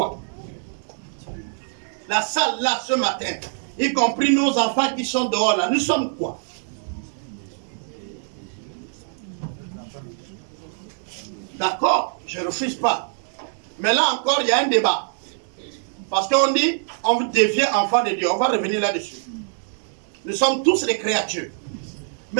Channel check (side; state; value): left; silent; 59 dB below the other